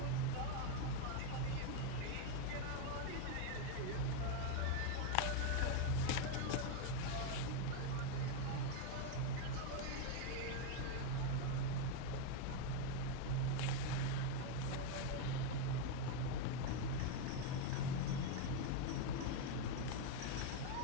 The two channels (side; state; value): both; different; correlation 0.01